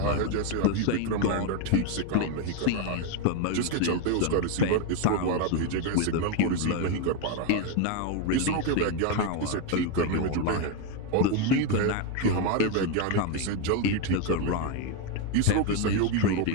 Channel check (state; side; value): different; both; correlation 0.02